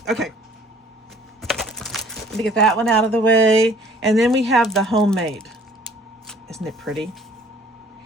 Okay. Let me get that one out of the way. And then we have the homemade. Isn't it pretty?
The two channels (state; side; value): normal; both; correlation 0.56